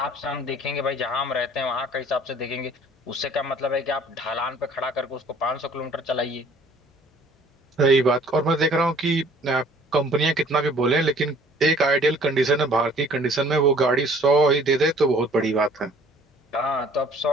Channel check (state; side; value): normal; both; correlation 0.55